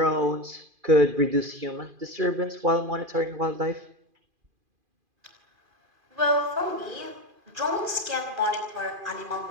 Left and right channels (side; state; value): left; late; 2.5 ms